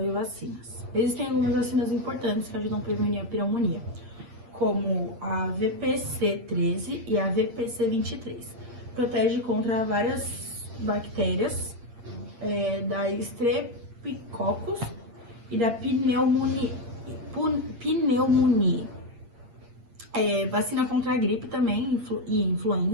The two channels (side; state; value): left; late; 8.6 ms